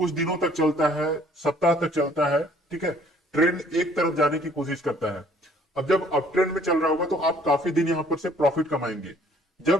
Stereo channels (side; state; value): both; normal; correlation 0.59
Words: दिनों तक चलता है, सप्ताह तक चलता है, ठीक है, ट्रेंड एक तरफ जाने की कोशिश करता है। अब जब अप ट्रेंड में चल रहा होगा तो आप काफी दिन यहां पर से प्रॉफिट कमाएंगे।